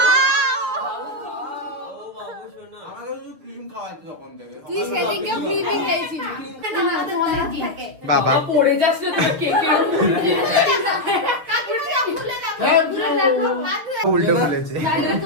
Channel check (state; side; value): late; left; 6.8 ms